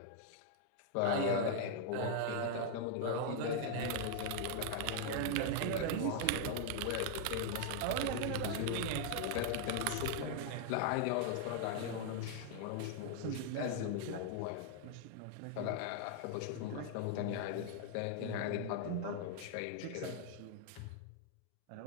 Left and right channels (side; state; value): both; different; correlation 0.00